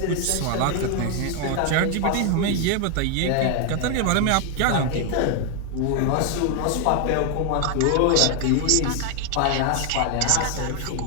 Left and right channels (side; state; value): both; different; correlation 0.01